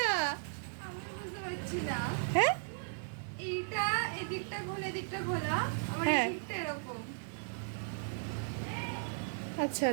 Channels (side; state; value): left; silent; 54 dB below the other